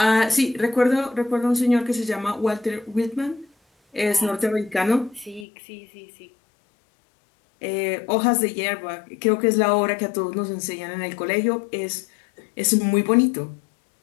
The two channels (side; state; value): right; drops out; at 5.5 s